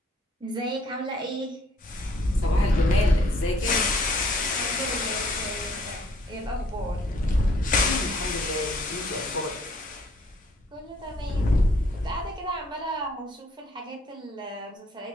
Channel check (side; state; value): both; normal; correlation 0.63